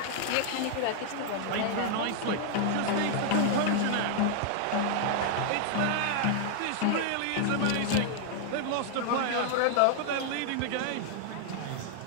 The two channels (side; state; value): both; different; correlation -0.01